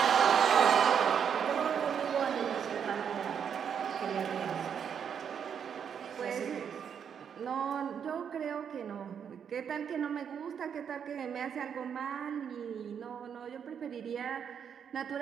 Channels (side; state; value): left; quieter; 7.7 dB